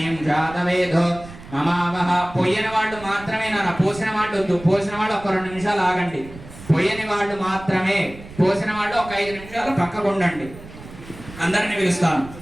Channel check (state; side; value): noise; right; rumble, 16 dB below the sound